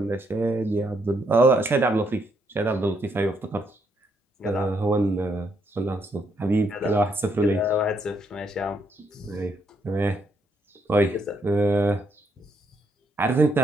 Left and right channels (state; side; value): normal; both; correlation 0.75